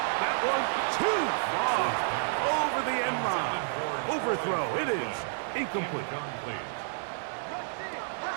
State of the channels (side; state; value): left; silent; digital silence